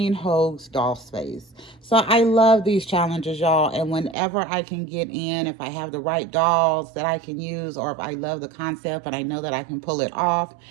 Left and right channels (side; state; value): left; drops out; at 4.2 s